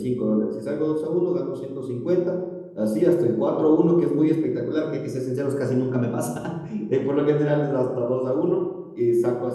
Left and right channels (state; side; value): identical; both; correlation 1.00